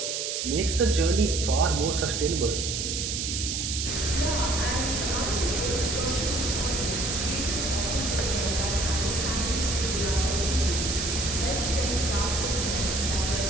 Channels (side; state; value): right; noise; hiss, 2 dB below the sound